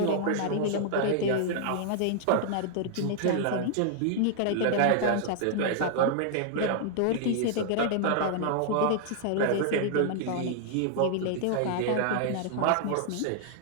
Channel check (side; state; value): both; different; correlation -0.01